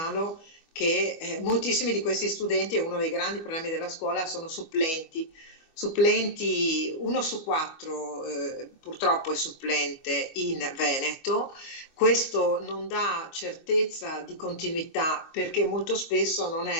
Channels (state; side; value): late; right; 22 ms